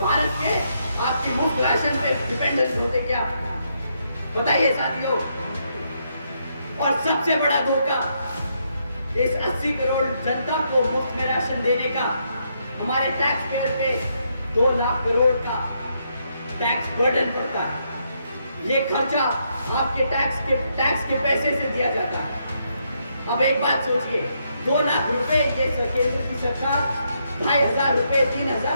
भारत के आपकी मुफ्त राशन पे डिपेंडेंट होते क्या? बताइए साथियों। और सबसे बड़ा धोखा इस 80 करोड़ जनता को मुफ्त में राशन देने का हमारे टैक्स पेयर पे 2 लाख करोड़ का टैक्स बर्डन पड़ता है। ये खर्चा आपके टैक्स के पैसे से दिया जाता है। अब एक बात सोचिए, 2 लाख रुपए ये केंद्र की सरकार 2,500 रुपए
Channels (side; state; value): both; inverted; correlation -0.77